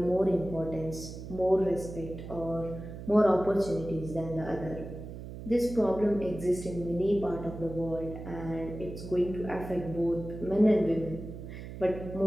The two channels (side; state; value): right; noise; hum, 11 dB below the sound